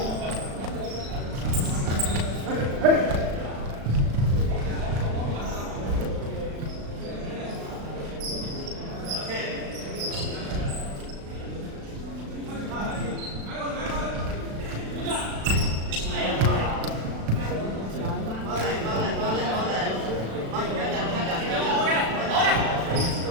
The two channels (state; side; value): late; left; 36 ms